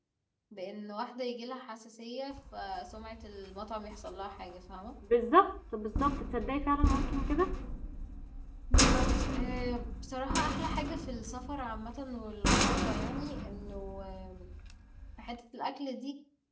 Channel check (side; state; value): both; identical; correlation 1.00